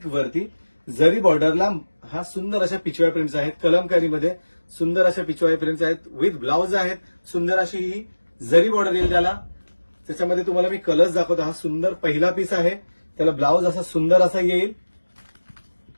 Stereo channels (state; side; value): inverted; both; correlation -1.00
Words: वरती जरी बॉर्डरला हा सुंदर अशा पिचवाय प्रिंट्स आहेत. कलमकारीमध्ये सुंदर अशा पिचवाय प्रिंट्स आहेत विथ ब्लाउज आहेत. सुंदर अशी ही जरी बॉर्डर येईल त्याला. त्याच्यामध्ये तुम्हाला मी कलर्स दाखवतो. हा सुंदर पहिला पीस आहे. त्याला ब्लाउज असा सुंदर असा येईल.